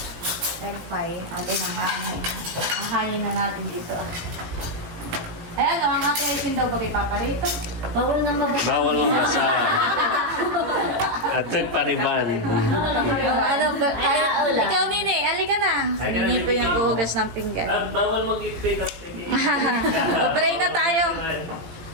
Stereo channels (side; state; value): left; late; 18 ms